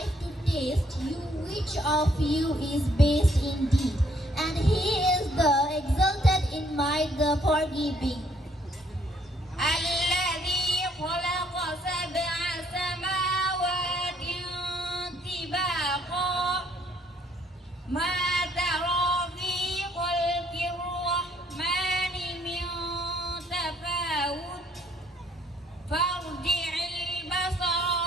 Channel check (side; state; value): both; normal; correlation 0.66